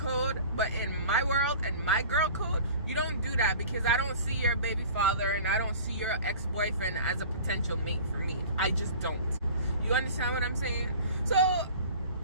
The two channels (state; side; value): inverted; both; correlation -0.43